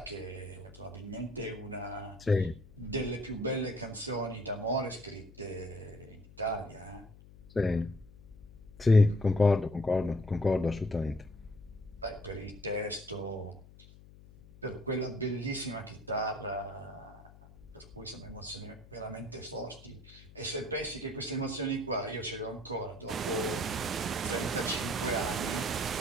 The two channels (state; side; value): noise; left; hum, 21 dB below the sound